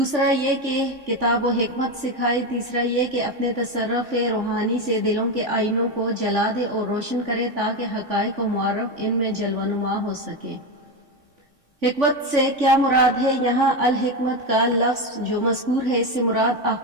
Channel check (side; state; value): left; late; 3.5 ms